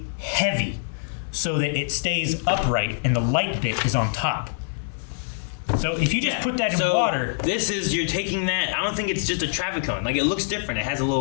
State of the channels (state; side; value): silent; right; 62 dB below the other